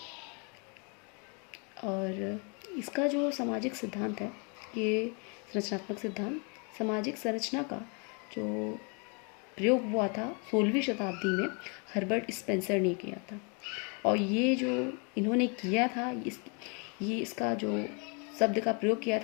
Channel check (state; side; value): quieter; right; 35.6 dB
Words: और इसका जो सामाजिक सिद्धांत है, ये संरचनात्मक सिद्धांत सामाजिक संरचना का जो प्रयोग हुआ था 16वीं शताब्दी में हर्बर्ट स्पेंसर ने किया था। और ये जो इन्होंने किया था, इसका जो शब्द का प्रयोग किया